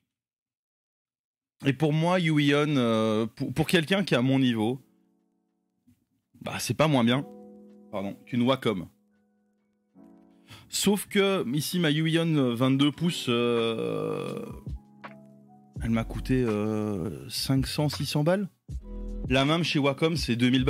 Et pour moi, Huion, pour quelqu'un qui est à mon niveau, bah c'est pas moins bien, pardon, qu'une Wacom. Sauf que ici ma Huion 22 pouces, elle m'a coûté 500-600 balles. La même chez Wacom c'est 2000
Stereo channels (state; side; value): identical; both; correlation 1.00